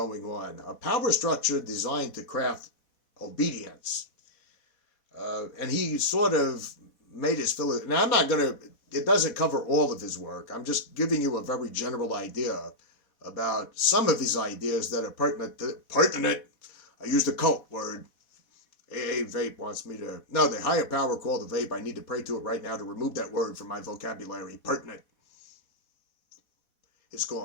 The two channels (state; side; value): late; right; 4.1 ms